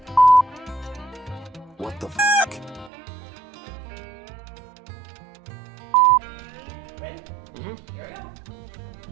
What the f***?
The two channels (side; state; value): left; drops out; at 2.9 s